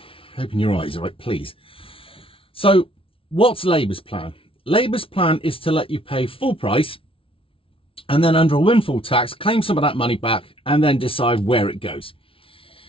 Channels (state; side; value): late; right; 0.26 ms